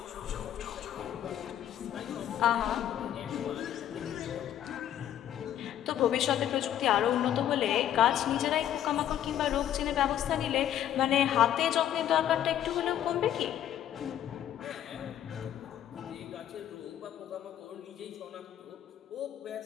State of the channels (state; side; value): quieter; right; 11.1 dB